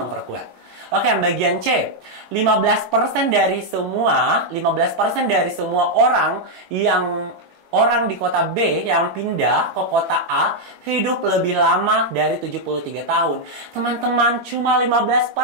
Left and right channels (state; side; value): late; left; 21 ms